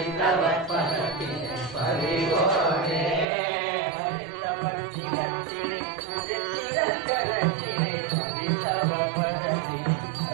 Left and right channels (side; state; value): left; drops out; at 3.2 s